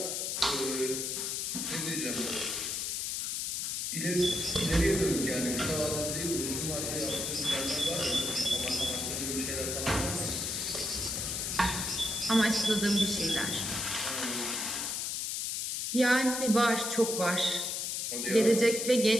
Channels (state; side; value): noise; left; hiss, 1 dB below the sound